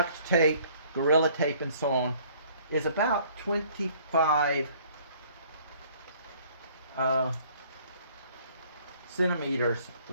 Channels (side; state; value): both; inverted; correlation -0.57